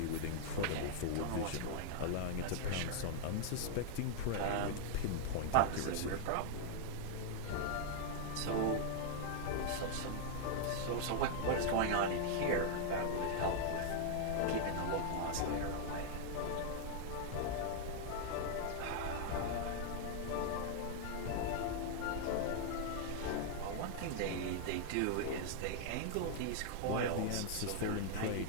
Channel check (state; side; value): different; both; correlation -0.01